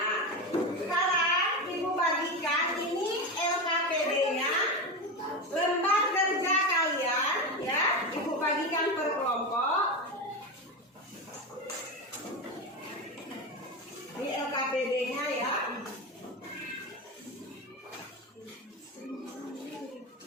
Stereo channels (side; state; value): both; normal; correlation 0.18